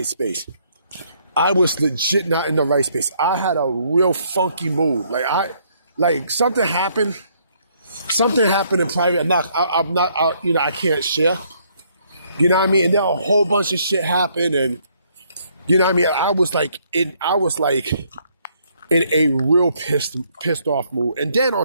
space. I was legit not in the right space. I had a real funky mood. Something happened. Something happened in private. I can't share. You know what I mean? And then a whole bunch of shit happened, and you know what I mean? I was in a real pissed off mood. And then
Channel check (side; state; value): both; inverted; correlation -0.68